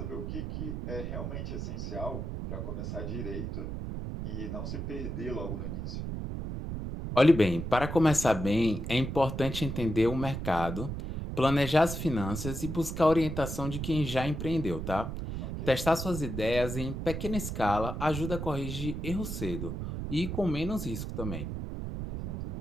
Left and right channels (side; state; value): right; noise; rumble, 5 dB below the sound